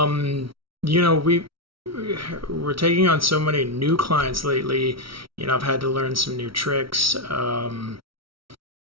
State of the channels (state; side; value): late; left; 0.75 ms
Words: taking on so many new clients lately. I've had to learn some new tricks.